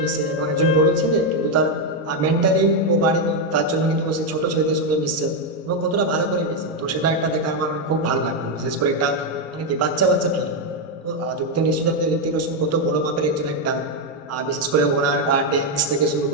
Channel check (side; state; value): both; normal; correlation 0.04